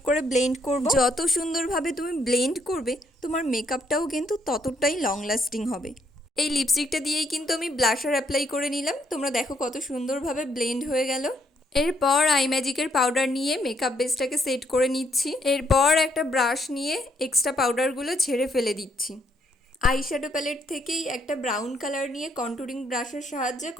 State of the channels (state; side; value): normal; both; correlation 0.72